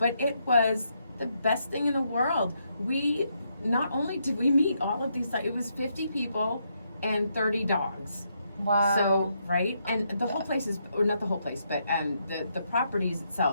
it was the best thing in the world. We not only did we meet all of these, it was 50 people and 30 dogs. Wow. So, right? And the whole place is, or not the whole place, but the properties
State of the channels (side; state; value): both; inverted; correlation -0.78